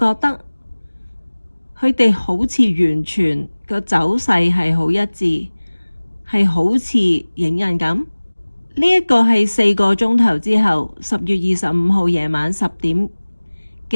得佢哋好似完全個走勢係好一致，係好似影印咁？呢一個係4個鐘頭之後10月25號夜晚10點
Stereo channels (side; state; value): both; inverted; correlation -1.00